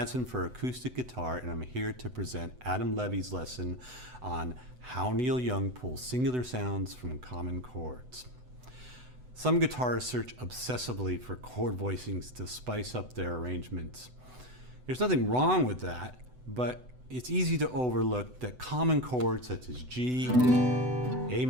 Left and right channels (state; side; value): late; left; 8.0 ms